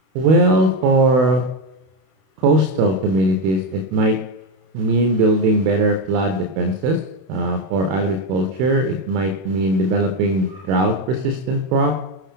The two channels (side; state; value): left; late; 31 ms